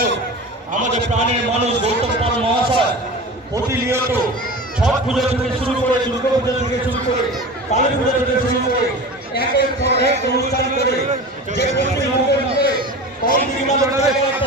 আমাদের প্রাণের মানুষ গৌতম পাল মহাশয় প্রতিনিয়ত ছট পুজো থেকে শুরু করে, দুর্গা পুজো থেকে শুরু করে, কালী পুজো থেকে শুরু করে একের পর এক অনুষ্ঠান করে যে পশ্চিমবঙ্গের মধ্যে একটা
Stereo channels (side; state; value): both; normal; correlation 0.33